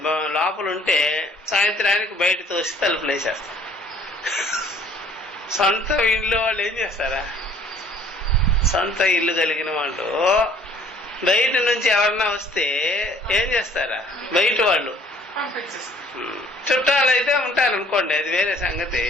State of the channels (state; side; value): normal; both; correlation 0.56